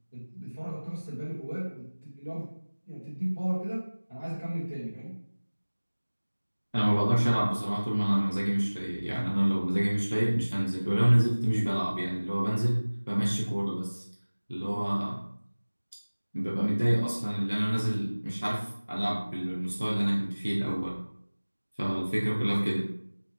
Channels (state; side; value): inverted; both; correlation -1.00